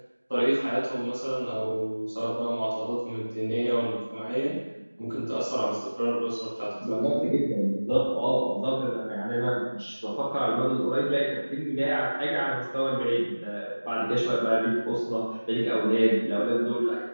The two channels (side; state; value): both; inverted; correlation -1.00